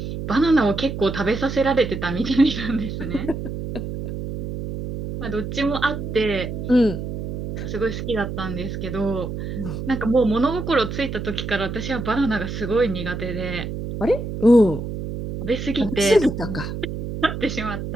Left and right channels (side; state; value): right; noise; hum, 6 dB below the sound